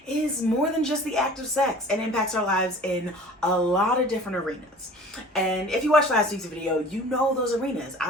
is more than just the act of sex and impacts our lives in a lot of different arenas. And if you watched last week's video, you know those arenas.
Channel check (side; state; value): both; normal; correlation 0.44